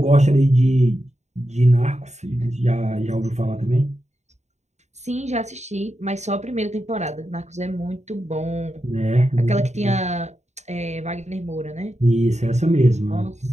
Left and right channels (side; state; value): left; late; 0.33 ms